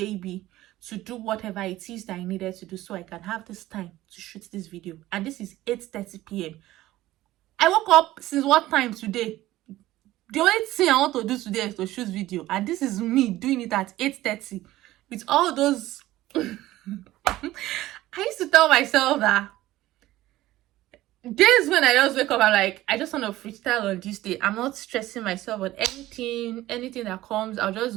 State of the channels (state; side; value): quieter; left; 16.0 dB